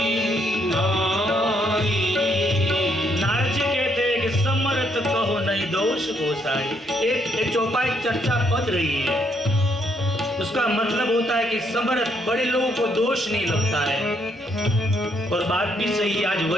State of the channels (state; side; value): normal; both; correlation 0.72